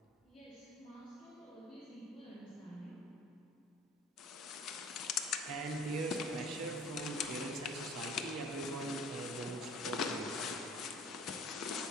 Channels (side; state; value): both; normal; correlation 0.48